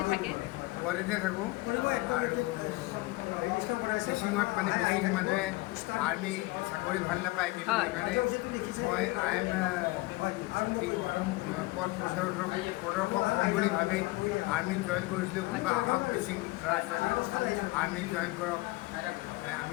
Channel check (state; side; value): quieter; right; 22.2 dB